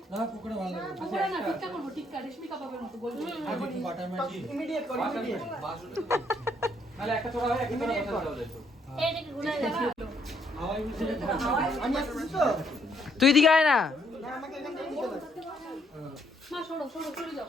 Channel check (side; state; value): both; normal; correlation 0.70